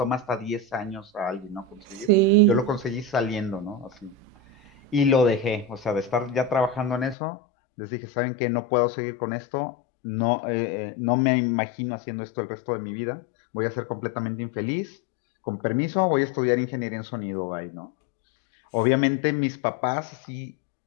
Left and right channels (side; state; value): right; drops out; at 7.2 s